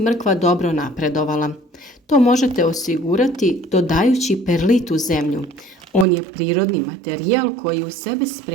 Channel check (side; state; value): left; drops out; at 6.1 s